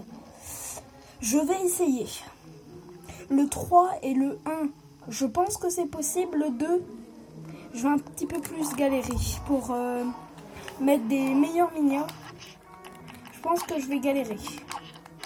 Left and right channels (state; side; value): identical; both; correlation 1.00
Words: Je vais essayer. Le 3 et le 1, je pense que c'est possible. Le 2, je vais un petit peu plus galérer pour mettre des meilleurs minions. Je pense que je vais galérer.